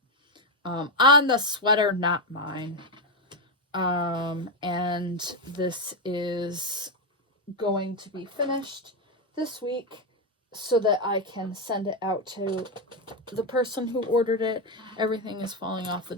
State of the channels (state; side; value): normal; both; correlation 0.06